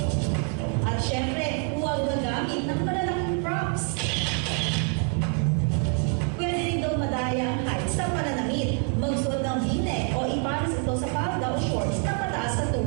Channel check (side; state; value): left; quieter; 35.6 dB